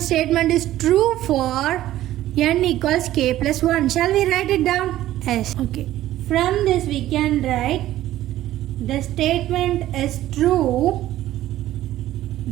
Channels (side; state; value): left; quieter; 14.1 dB